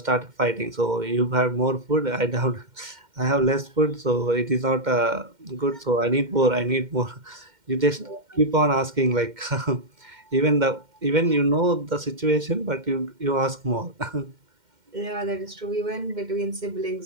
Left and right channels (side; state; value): left; late; 2.1 ms